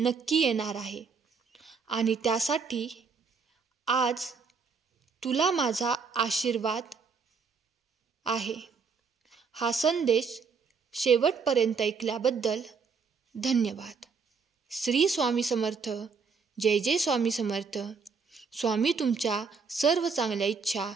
येणार आहे आणि त्यासाठी आज तुला माझा आशीर्वाद आहे. हा संदेश शेवटपर्यंत ऐकल्याबद्दल धन्यवाद. श्री स्वामी समर्थ. जय जय स्वामी समर्थ. स्वामी तुमच्या सर्व चांगल्या इच्छा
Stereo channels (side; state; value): left; quieter; 5.3 dB